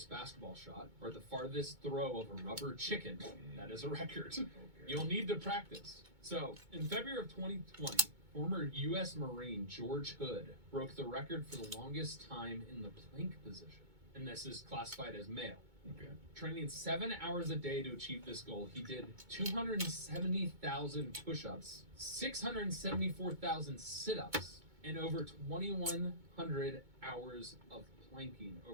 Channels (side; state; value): left; late; 2.2 ms